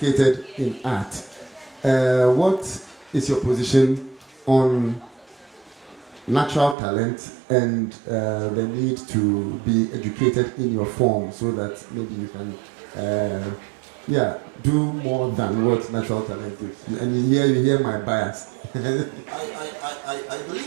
in art. What is your position on natural talent and the need to be educated in your form so that maybe you can do more than what natural talent is? And you hear my bias. I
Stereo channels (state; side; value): drops out; left; at 6.8 s